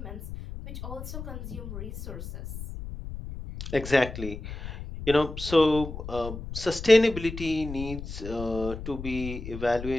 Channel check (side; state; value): left; noise; rumble, 9 dB below the sound